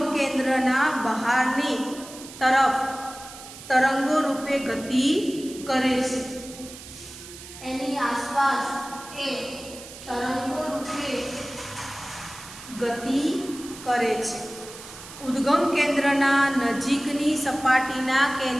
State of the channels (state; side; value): noise; right; hiss, 15 dB below the sound